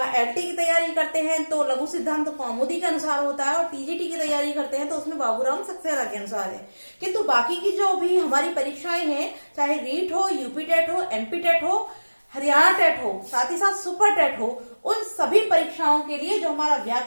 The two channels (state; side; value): inverted; both; correlation -1.00